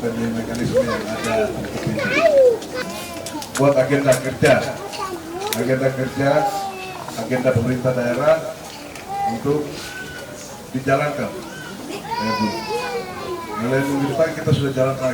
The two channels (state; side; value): identical; both; correlation 1.00